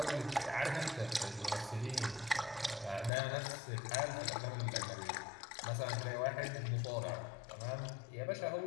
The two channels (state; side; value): drops out; right; at 3.1 s